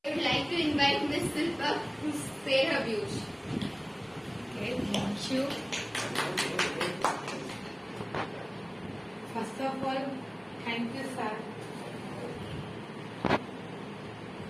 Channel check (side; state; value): both; identical; correlation 1.00